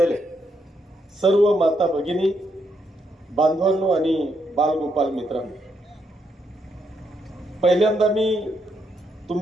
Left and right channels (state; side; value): normal; both; correlation 0.77